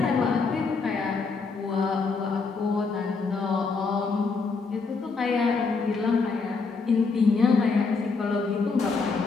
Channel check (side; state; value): right; quieter; 4.5 dB